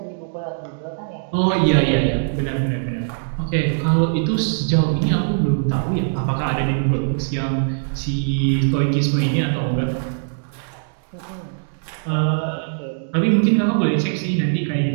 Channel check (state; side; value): silent; left; digital silence